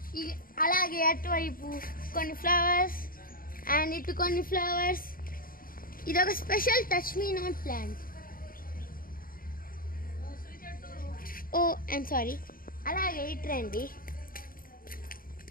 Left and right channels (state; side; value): late; right; 0.42 ms